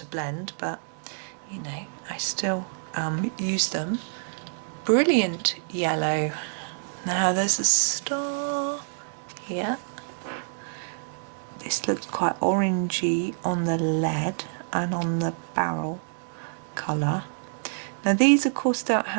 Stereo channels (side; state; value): left; silent; digital silence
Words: blend, but you know, I still use them. Brilliant yellow. Now there's a star here. This looks quite orangey on the lead and on the barrel colour. Now these of course don't